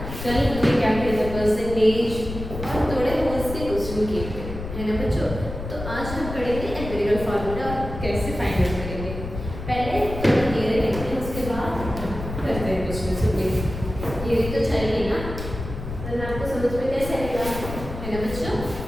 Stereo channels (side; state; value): left; noise; rumble, 8 dB below the sound